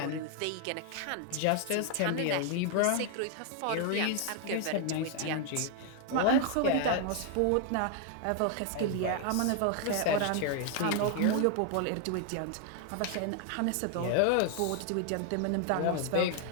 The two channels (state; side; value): different; both; correlation 0.00